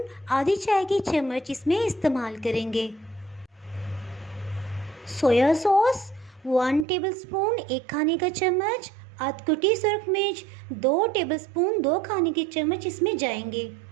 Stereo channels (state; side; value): drops out; left; at 6.9 s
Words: आधी चाय की चम्मच इसमें इस्तेमाल करेंगे। सोया सॉस 1 टेबलस्पून, 1 खाने का चम्मच। अधकुटी सुर्ख मिर्च 2 टेबलस्पून, 2 खाने के चम्मच इसमें जाएंगे।